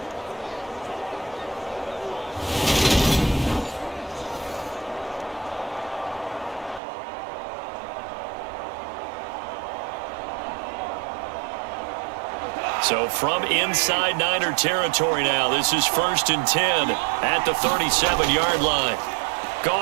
So from inside Niner territory now, this is 1st and 10 at the 37-yard line.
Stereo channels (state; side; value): drops out; left; at 6.8 s